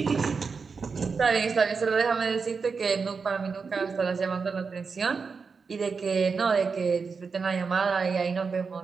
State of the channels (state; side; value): quieter; left; 5.1 dB